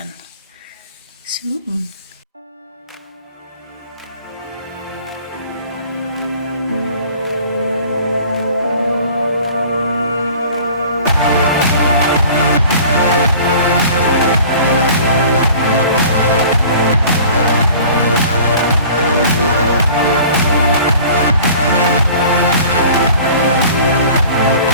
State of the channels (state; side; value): inverted; both; correlation -0.46